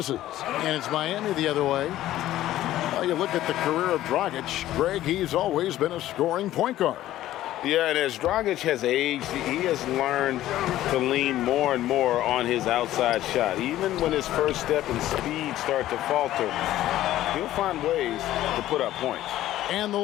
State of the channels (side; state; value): right; quieter; 14.0 dB